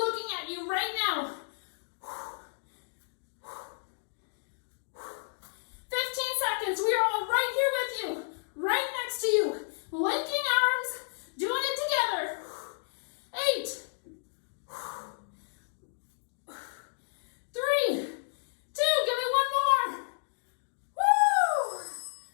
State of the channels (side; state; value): right; silent; digital silence